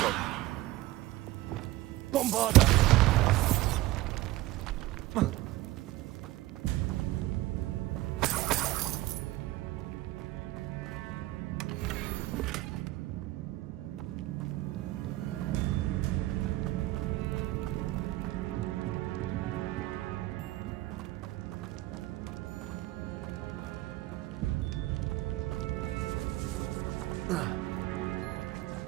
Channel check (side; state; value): left; quieter; 17.3 dB